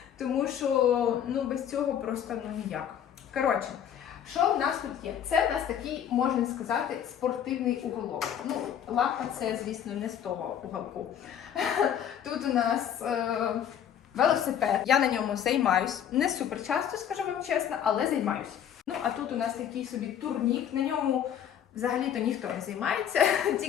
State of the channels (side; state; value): right; quieter; 9.3 dB